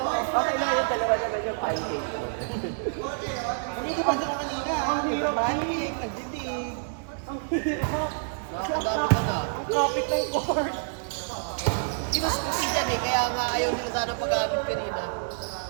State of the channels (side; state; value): left; silent; digital silence